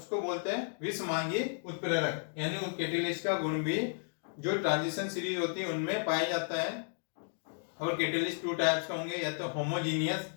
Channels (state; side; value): silent; right; digital silence